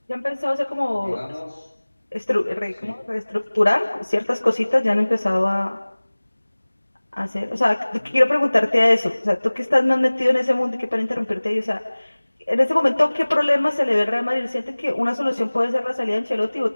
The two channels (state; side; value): inverted; both; correlation -1.00